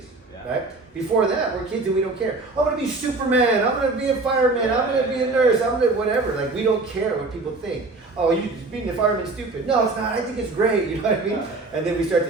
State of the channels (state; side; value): quieter; left; 3.4 dB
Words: right? Before that, we're kids and we don't care. I'm gonna be Superman. I'm gonna be a fireman. I'm gonna be a nurse. I'm gonna whatever. Like, we don't care what people think. Oh, you being a fireman stupid. No, it's not. I think it's great. You know what I mean? And then we start